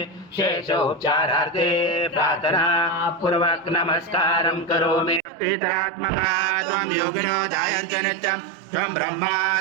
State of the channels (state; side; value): drops out; left; at 5.2 s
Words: शेषोपचारार्थे प्रार्थना पूर्वक नमस्कारं करोमि। त्रितरात्मका त्वं योगिनो जायन्ते नित्यं त्वं ब्रह्मा